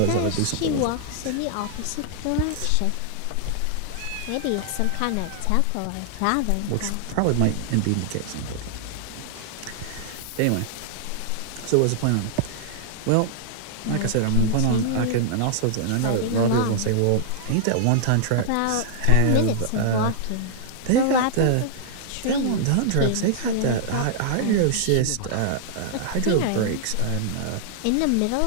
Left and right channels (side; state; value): both; different; correlation -0.01